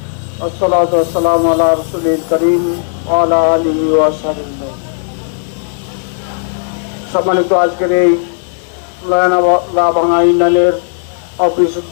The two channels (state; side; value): silent; right; digital silence